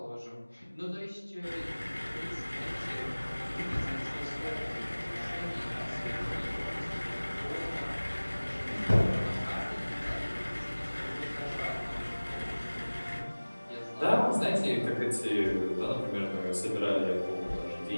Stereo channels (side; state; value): both; inverted; correlation -1.00